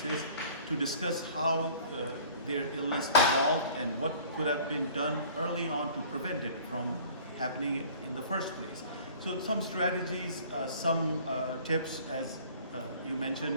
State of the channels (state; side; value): inverted; both; correlation -0.49